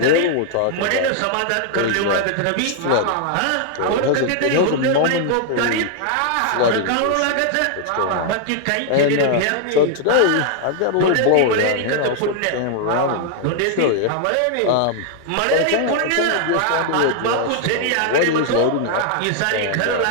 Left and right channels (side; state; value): both; different; correlation 0.00